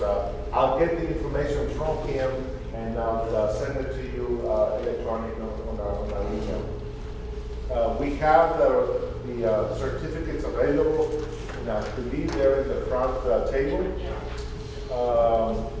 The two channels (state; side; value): identical; both; correlation 1.00